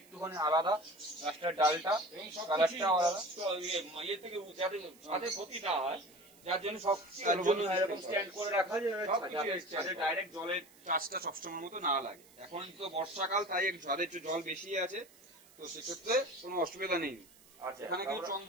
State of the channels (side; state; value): right; noise; hiss, 25 dB below the sound